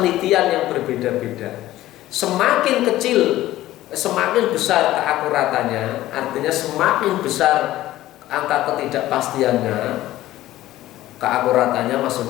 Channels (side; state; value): right; quieter; 15.2 dB